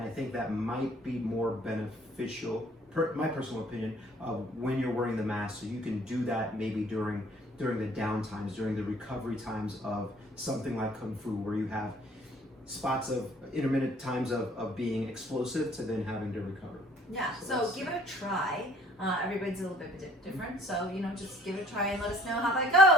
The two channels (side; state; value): both; normal; correlation 0.57